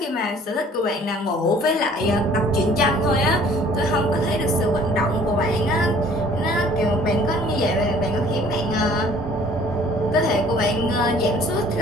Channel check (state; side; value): normal; both; correlation 0.54